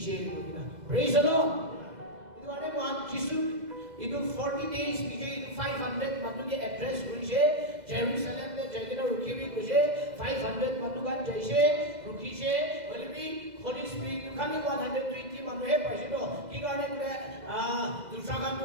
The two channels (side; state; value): left; late; 2.0 ms